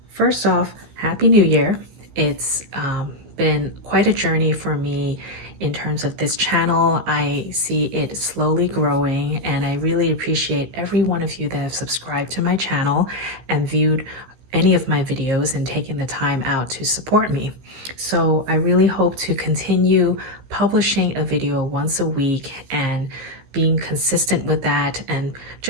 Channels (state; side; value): late; left; 15 ms